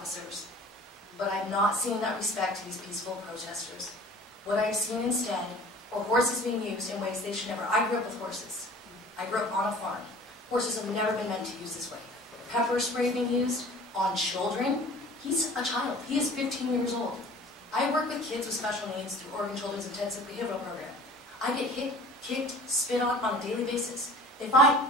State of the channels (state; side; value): normal; both; correlation 0.46